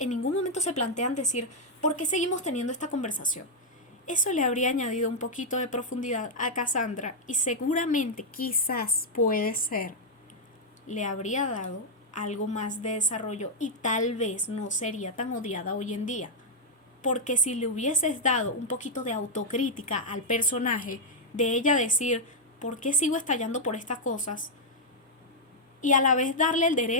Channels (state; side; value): normal; both; correlation -0.03